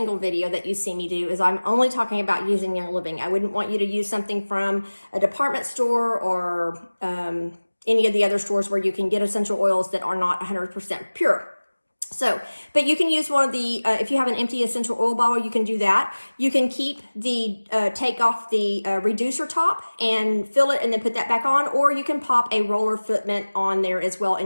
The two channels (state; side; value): inverted; both; correlation -1.00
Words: video that you see me do is I'm only talking about using Young Living. I wouldn't want you to use something from a department store or any of the other stores where you can get essential oils that are not 100% pure. So, but you can use one of the, if you have an empty essential oil bottle, you can do that. You can keep take off the reducer top and fill it and then put that back on, or you can pop a roller fitment on there as well